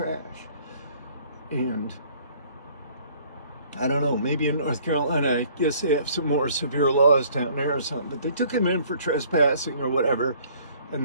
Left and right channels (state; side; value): inverted; both; correlation -0.57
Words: And I don't know, maybe in North Carolina, I guess they have some more severe laws down there or something, but they took him in for trespassing or whatever,